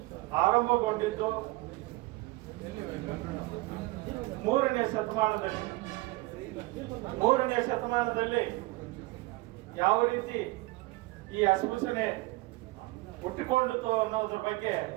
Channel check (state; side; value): quieter; left; 21.3 dB